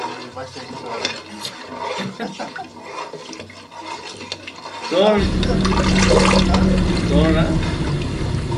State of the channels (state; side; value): identical; both; correlation 1.00